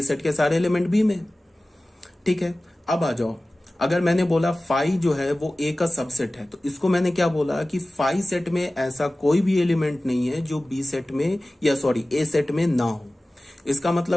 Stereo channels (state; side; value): normal; both; correlation 0.97